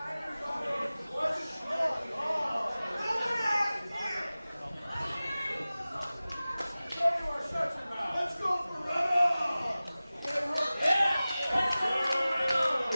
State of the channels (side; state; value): both; inverted; correlation -0.97